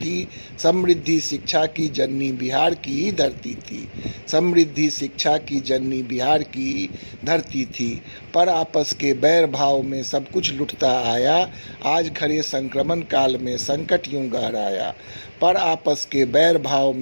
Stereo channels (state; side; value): inverted; both; correlation -1.00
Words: समृद्धि शिक्षा की जननी बिहार की ही धरती थी, समृद्धि शिक्षा की जननी बिहार की ही धरती थी। पर आपस के बैर भाव में सब कुछ लुटता आया, आज खड़े संक्रमण काल में संकट यूं गहराया। पर आपस के बैर भाव